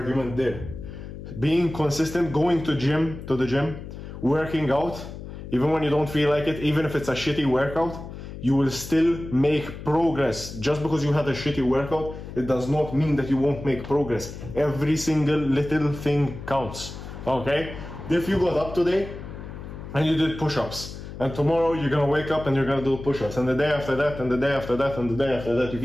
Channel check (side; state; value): left; noise; hum, 11 dB below the sound